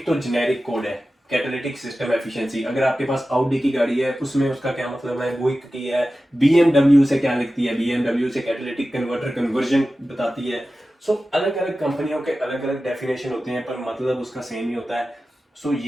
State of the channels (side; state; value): both; normal; correlation 0.94